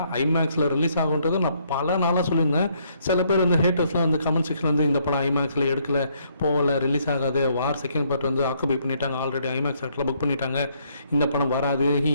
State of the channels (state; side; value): inverted; both; correlation -0.69